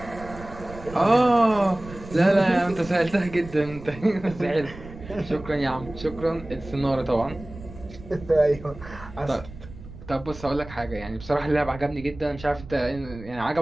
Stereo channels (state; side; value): noise; right; rumble, 15 dB below the sound